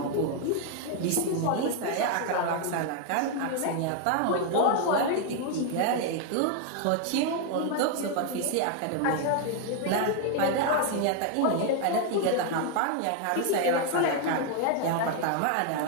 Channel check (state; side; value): different; both; correlation 0.00